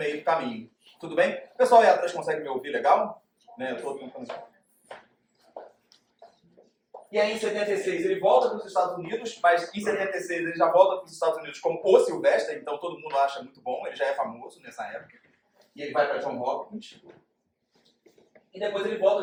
do caminho. Tudo bem? O pessoal aí atrás consegue me ouvir legal? Né? Eu tô tentando... E aí, em 76, ele volta para os Estados Unidos, mas em 76 ele já volta para os Estados Unidos como o Silvestre, então todo mundo acha muito bom, ele já é famoso nessa época. E ele vai para John Hopkins. E depois ele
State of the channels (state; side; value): identical; both; correlation 1.00